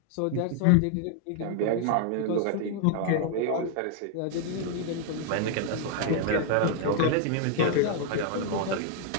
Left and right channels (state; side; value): different; both; correlation 0.00